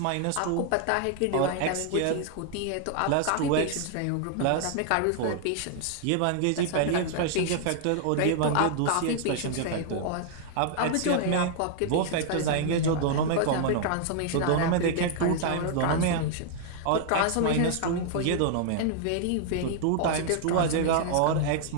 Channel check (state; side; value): different; both; correlation 0.00